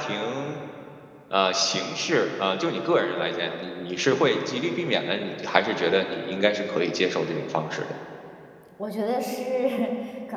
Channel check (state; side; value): identical; both; correlation 1.00